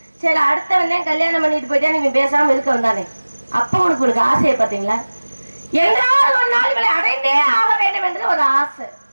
சரி அடுத்த வந்தேன் கல்யாணம் பண்ணிட்டு போயிட்டா நீங்க பேசாம இருக்க வந்தானே, அப்ப உனக்கு ஆசையை பாத்தீங்களா? என்றால் ஒரு நாள் இவளை அடைந்தே ஆக வேண்டும் என்று ஒரு ஆசை,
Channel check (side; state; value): both; inverted; correlation -1.00